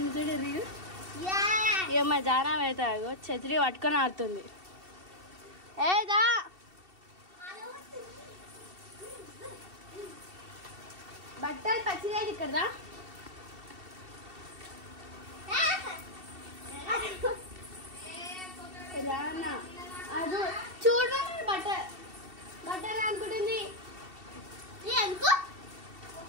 చూడండి. ఇక మా జానం అయితే ఛత్రి పట్టుకొని ఆడుతుంది. ఏదా బట్టలు పచ్చిలేదు ఇక్కడ రానా అది చూడ బట్టలు అనుకుంటుంది.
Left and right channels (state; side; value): late; left; 2.7 ms